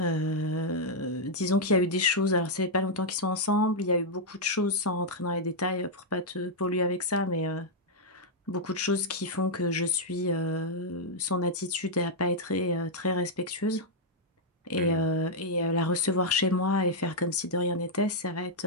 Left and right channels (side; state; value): both; normal; correlation -0.04